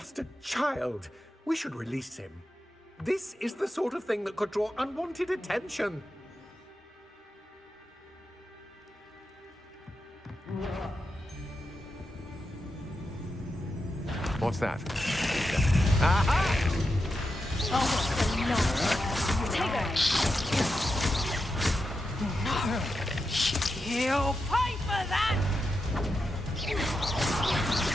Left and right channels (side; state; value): both; normal; correlation 0.88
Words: a child. We should release him. This is the sort of thing that could draw unwanted attention. What's that? Aha! You'll pay for that!